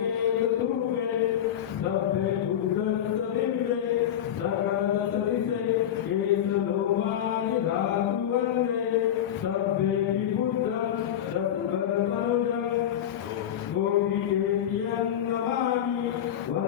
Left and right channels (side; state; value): right; quieter; 10.3 dB